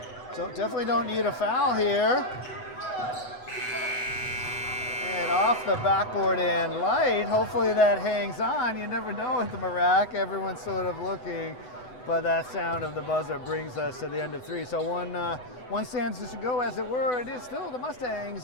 So definitely don't need a foul here. And off the backboard and light. Hopefully that hangs on. You never know with the Marac. Everyone's sort of looking. But that sound of the buzzer brings us to the end of 3. So one stands to go, as it were. It is still the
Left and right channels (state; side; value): late; right; 8.0 ms